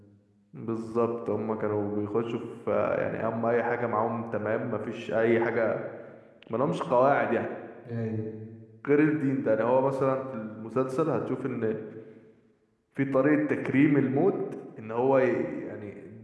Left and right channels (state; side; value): identical; both; correlation 1.00